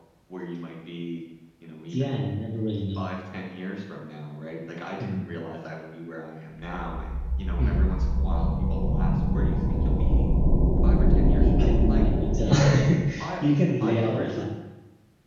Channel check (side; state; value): both; identical; correlation 1.00